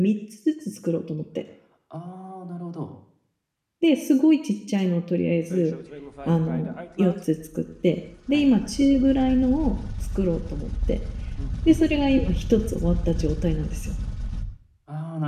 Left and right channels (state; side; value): identical; both; correlation 1.00